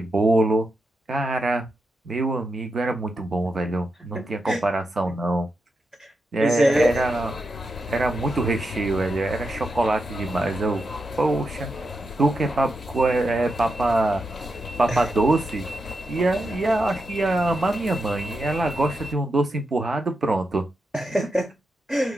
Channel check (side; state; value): both; normal; correlation 0.86